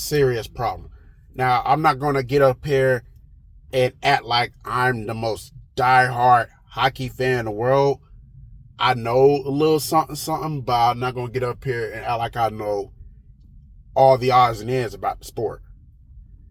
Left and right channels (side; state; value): both; identical; correlation 1.00